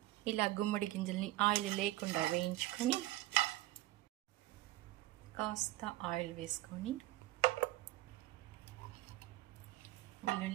ఇలా గుమ్మడి గింజల్ని ఆయిల్ లేకుండా వేయించుకొని కాస్త ఆయిల్ వేసుకొని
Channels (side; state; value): left; quieter; 16.9 dB